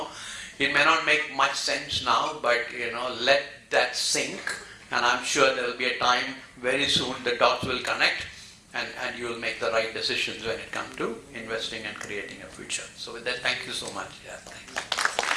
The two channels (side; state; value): both; identical; correlation 1.00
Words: may not make much sense now, but let that sink, and I'm sure there will be a time very soon the dots will connect, and you will make the right decisions when it comes to investing and creating a future. So with that, thank you so much. Yeah, thanks.